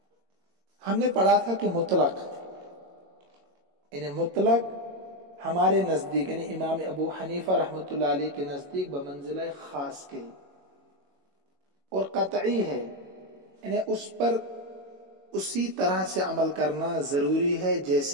ہم نے پڑھا تھا کہ مطلق، یعنی مطلق ہمارے نزدیک، یعنی امام ابو حنیفہ رحمۃ اللہ علیہ کے نزدیک بمنزلہ خاص کے، اور قطعی ہے، یعنی اس پر اسی طرح سے عمل کرنا ضروری ہے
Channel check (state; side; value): late; left; 22 ms